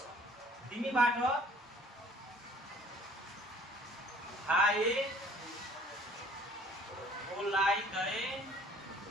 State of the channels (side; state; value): both; normal; correlation 0.54